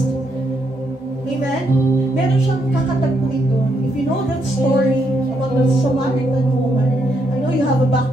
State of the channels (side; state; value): both; normal; correlation 0.77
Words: Amen? Meron siyang kakatagpuin doon. If you know that story about the Samaritan woman, I know you have a